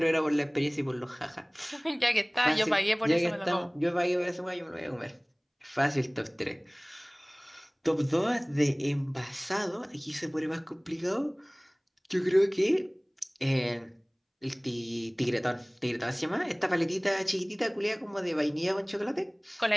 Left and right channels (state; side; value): identical; both; correlation 1.00